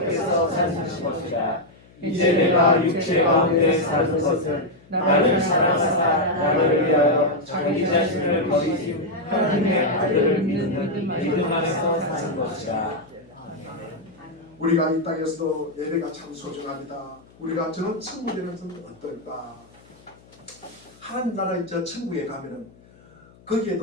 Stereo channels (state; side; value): noise; left; hum, 27 dB below the sound